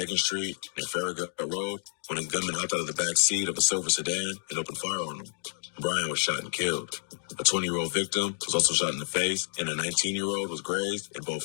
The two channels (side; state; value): right; silent; digital silence